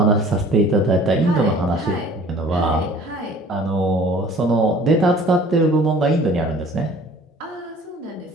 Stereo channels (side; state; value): both; normal; correlation 0.50